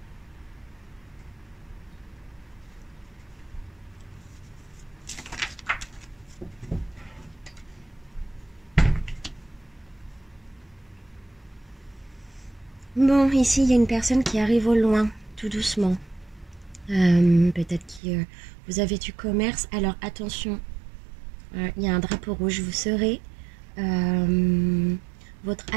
Bon, ici il y a une personne qui arrive au loin, tout doucement. Peut-être que vous avez du commerce. Alors attention, il y a un drapeau rouge. Vous serez votre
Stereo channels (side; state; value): left; drops out; at 18.0 s